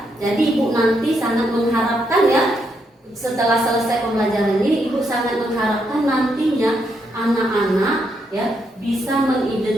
Jadi Ibu nanti sangat mengharapkan ya, setelah selesai pembelajaran ini Ibu sangat mengharapkan nantinya anak-anak ya bisa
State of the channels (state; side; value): normal; both; correlation 0.78